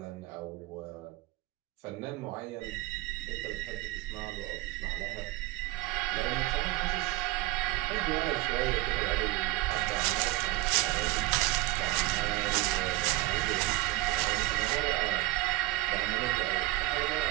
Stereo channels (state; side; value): quieter; left; 19.4 dB